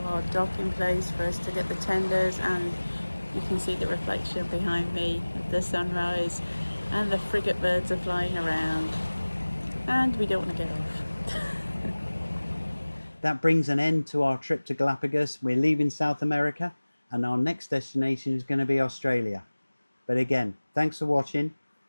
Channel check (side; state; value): both; inverted; correlation -1.00